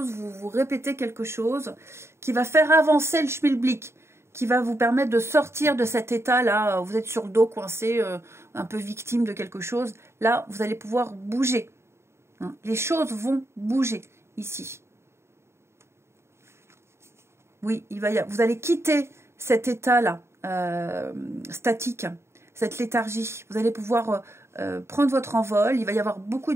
vous répéter quelque chose qui va faire avancer le schmilblick, qui va vous permettre de sortir de cet état-là. Vous êtes sur le dos, coincé, un peu victime de quelque chose. Là, vous allez pouvoir bouger. Hein, les choses vont bouger ici. Oui, vous allez quitter cet état-là, statique, cette léthargie. Vous allez pouvoir prendre votre envol. Il va y avoir beaucoup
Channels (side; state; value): left; late; 0.13 ms